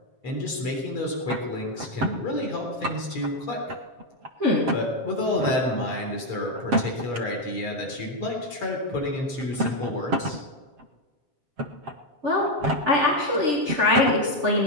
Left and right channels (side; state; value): left; late; 7.5 ms